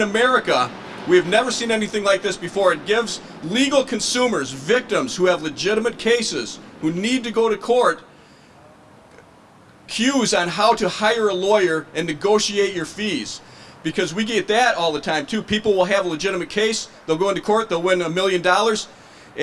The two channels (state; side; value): identical; both; correlation 1.00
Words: we have never seen anything like this before. It gives legal consumers, victims who have legitimate cases, who need to go to court, cues on how to hire a lawyer and negotiate your fees. Because we get that all the time too. People will have a legitimate case, they'll go into court, they'll win $1 million,